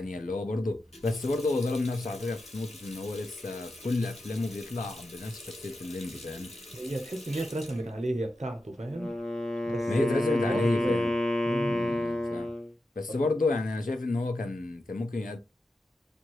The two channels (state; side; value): normal; both; correlation 0.89